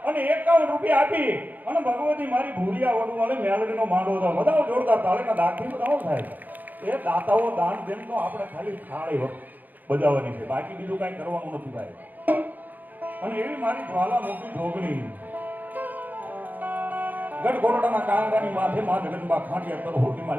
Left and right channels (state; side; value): late; left; 0.084 ms